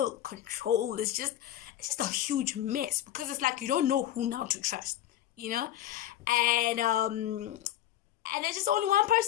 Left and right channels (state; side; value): quieter; right; 12.5 dB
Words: controlled. It's just a huge mess, because it's like you don't know who now to trust. And there's just only one